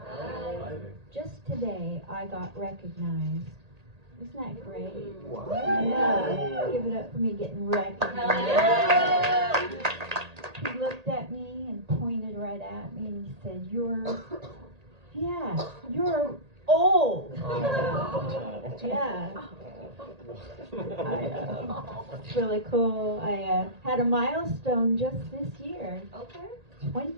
Just today, I got recognized. Isn't that great? Wow. Yeah. Give it up for me getting recognized. He looked at me and pointed right at me and he said, you're old. Yeah. It's really cool. I had a milestone just this year. Okay.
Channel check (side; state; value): left; late; 1.8 ms